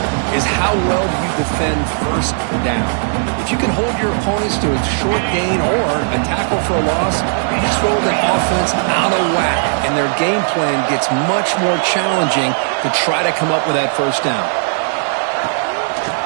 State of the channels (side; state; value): left; silent; digital silence